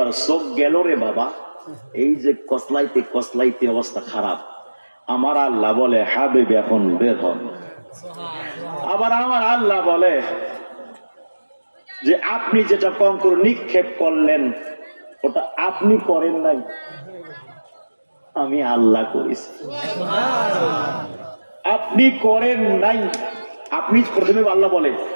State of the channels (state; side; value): inverted; both; correlation -1.00